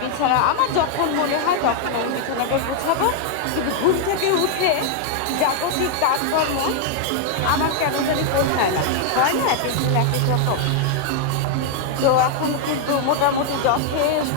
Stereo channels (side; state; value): both; different; correlation 0.00